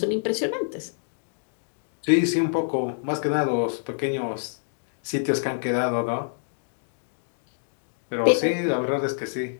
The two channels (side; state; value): right; silent; digital silence